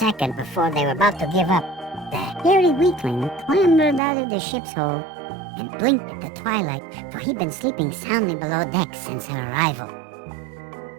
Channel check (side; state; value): left; drops out; at 4.0 s